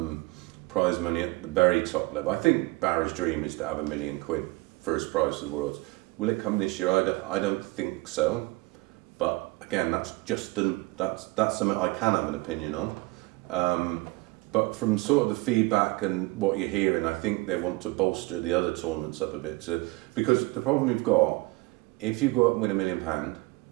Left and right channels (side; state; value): left; quieter; 22.7 dB